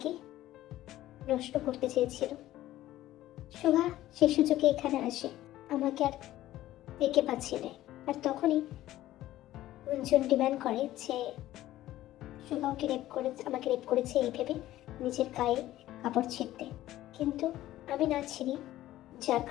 নষ্ট করতে চেয়েছিল। সুগা সেই সুযোগে এখানে আসে, আমাকে আর দেখে বাঁচিয়ে নেয়। আর তখনই রঞ্জন ডিমান্ড করে যে সুগা ওকে রেপ করে, আমাকে রেপ করেছে এই ভেবে নিজের গায়ে কাপড় ছিঁড়তে। কিন্তু আমি না ছিঁড়ি, যার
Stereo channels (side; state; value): right; quieter; 14.7 dB